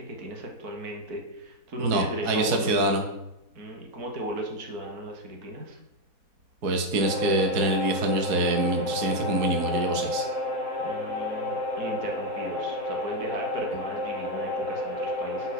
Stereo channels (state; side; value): late; left; 4.7 ms